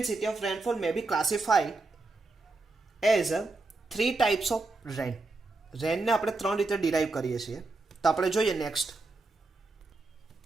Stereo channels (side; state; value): left; quieter; 3.4 dB